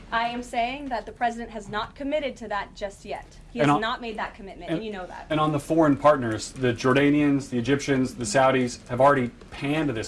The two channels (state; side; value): identical; both; correlation 1.00